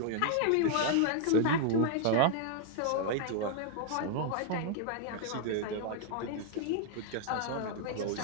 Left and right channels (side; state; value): both; different; correlation -0.01